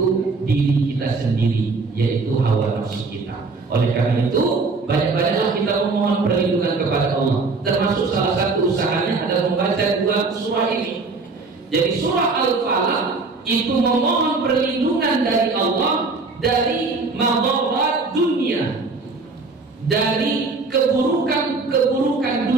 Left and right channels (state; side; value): quieter; left; 4.0 dB